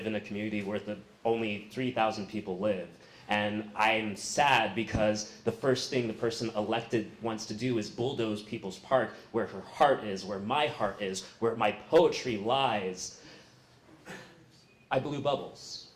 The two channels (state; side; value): identical; both; correlation 1.00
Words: in a community where only 3,000 people live. And I'm sad because the first thing the person elected wants to do is bulldoze People's Park, where her heart is, where my heart is, where my poetry lies. I blew bubbles